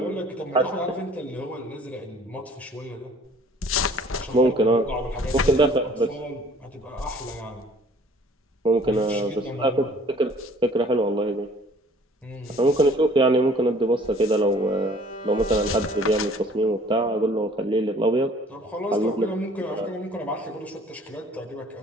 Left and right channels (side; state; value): both; normal; correlation 0.54